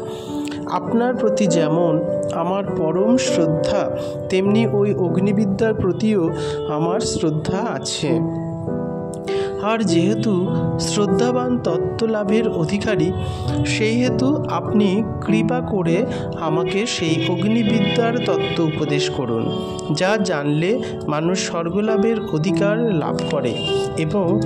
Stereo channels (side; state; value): both; identical; correlation 1.00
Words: আপনার প্রতি যেমন আমার পরম শ্রদ্ধা, তেমনি ওই অগ্নিবিদ্যার প্রতিও আমার শ্রদ্ধা আছে। আর যেহেতু শ্রদ্ধাবান তত্ত্বলাভের অধিকারী, সেই হেতু আপনি কৃপা করে আমাকে সেই অগ্নিবিদ্যার তত্ত্ব উপদেশ করুন, যা জানলে মানুষ স্বর্গলাভের অধিকার লাভ করে এবং